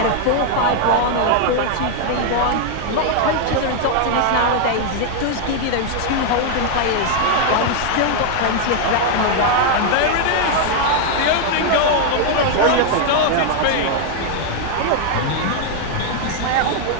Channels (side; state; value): both; different; correlation 0.00